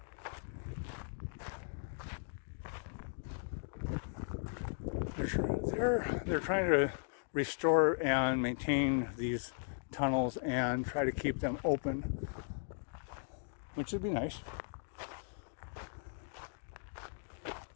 They're trying to restore and maintain these tunnels and try to keep them open, which would be nice.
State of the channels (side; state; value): right; silent; digital silence